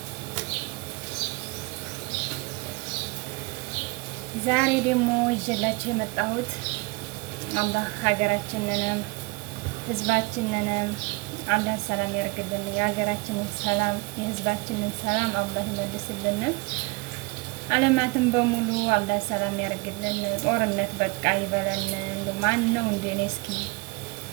ዛሬ ደግሞ ይዤላችሁ የመጣሁት አላህ ሀገራችንንም ህዝባችንንም አላህ ሰላም ያርግልን። የሀገራችንን ሰላም የህዝባችንን ሰላም አላህ ይመልስልን። ዓለማትን በሙሉ አላህ ሰላም ያርግልን። ጦርነት በቃ ይበለን። እንደው ማን ነው እንደኔ እስኪ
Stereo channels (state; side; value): quieter; left; 27.2 dB